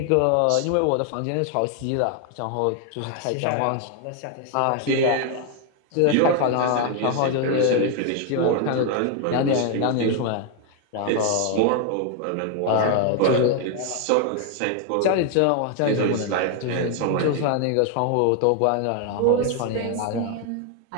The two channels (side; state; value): both; different; correlation 0.01